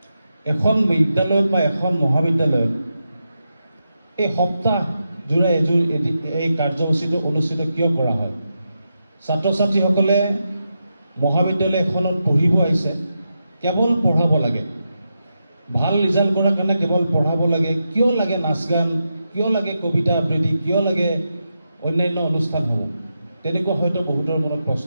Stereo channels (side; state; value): both; inverted; correlation -0.87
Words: এখন বিদ্যালয়ত বা এখন মহাবিদ্যালয়ত এই সপ্তাহ জোৰা এই কাৰ্যসূচীটো অনুষ্ঠিত কিয় কৰা হয়? ছাত্ৰ ছাত্ৰীসকলে মহাবিদ্যালয় এখনত পঢ়িব আহিছে, কেৱল পঢ়াব লাগে, ভাল ৰিজাল্ট কৰাৰ কাৰণে কেৱল পঢ়াব লাগে। কিয় লাগে নাচ গান, কিয় লাগে কবিতা আবৃত্তি, কিয় লাগে অন্যান্য অনুষ্ঠানসমূহ? তেনেকুৱা হয়তো বহুতৰ মনত